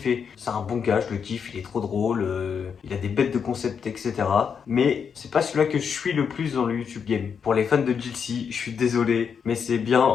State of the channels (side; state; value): right; quieter; 6.8 dB